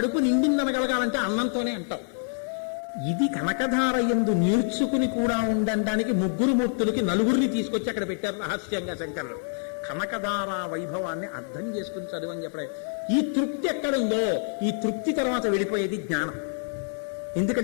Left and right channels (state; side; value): silent; right; 60 dB below the other